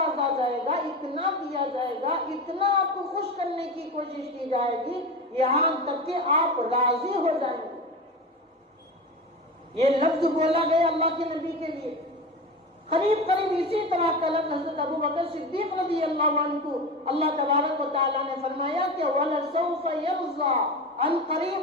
جائے گا، اتنا دیا جائے گا، اتنا آپ کو خوش کرنے کی کوشش کی جائے گی، یہاں تک کہ آپ راضی ہو جائیں گے۔ یہ لفظ بولا گیا اللہ کے نبی کے لیے۔ قریب قریب اسی طرح کا لفظ حضرت ابو بکر صدیق رضی اللہ عنہ کو اللہ تبارک و تعالیٰ نے فرمایا کہ وَلَسَوْفَ يَرْضَىٰ، ان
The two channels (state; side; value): normal; both; correlation 0.26